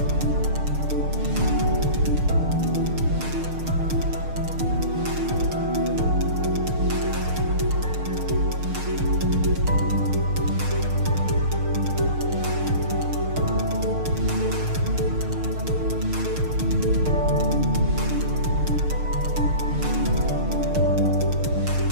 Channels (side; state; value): left; late; 6.5 ms